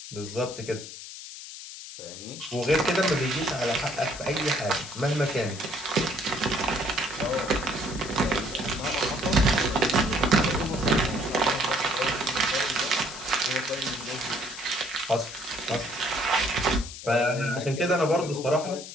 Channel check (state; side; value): noise; left; hiss, 12 dB below the sound